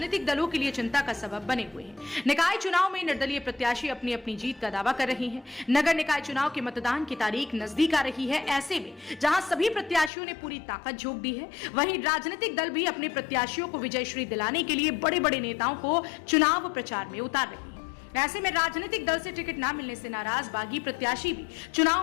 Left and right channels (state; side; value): drops out; right; at 10.1 s